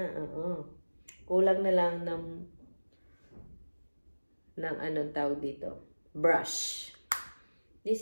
Kulang na lang ng anong tawag dito. Brush.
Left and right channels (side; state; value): both; inverted; correlation -1.00